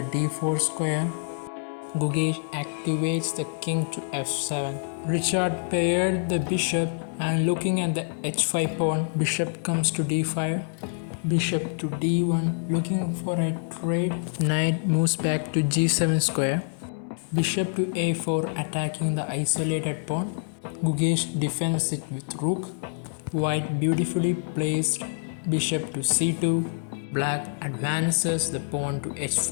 d4 square. Gukesh activates the king to f7. Richard paired the bishop, and looking at the h5 pawn, bishop comes to d5. Bishop to d1, looking for a trade. Knight moves back to g7 square. Bishop to a4, attacking the isolated pawn. Gukesh defends it with rook. White beautifully placed bishop to c2. Black advances the pawn to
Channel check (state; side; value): silent; right; 61 dB below the other